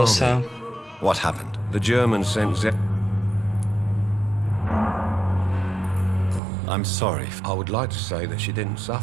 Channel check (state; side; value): drops out; left; at 6.4 s